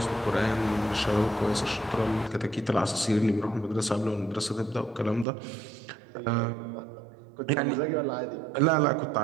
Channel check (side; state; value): left; drops out; at 5.2 s